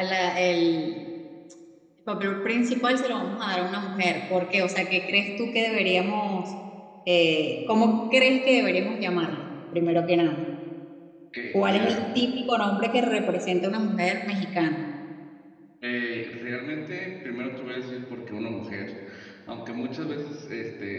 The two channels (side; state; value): both; identical; correlation 1.00